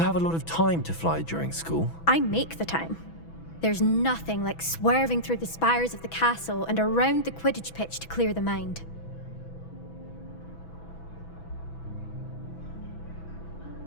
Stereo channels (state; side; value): late; right; 6.1 ms